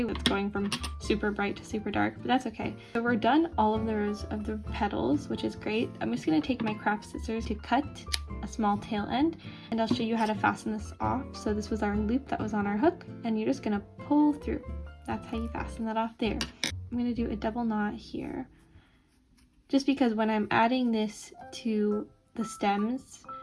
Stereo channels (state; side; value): identical; both; correlation 1.00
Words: It's going from super bright to super dark, but that's okay. So we're done all of the rows of the petals, which is great. I'm just going to take my craft scissors to cut a small tail end, and I'll show you how to fasten this off. So this was our loop that was on our hook, and you're just going to pull through. That's how you fasten that off there. I'm going to do a double knot here, just because when I'm adding this to the stems,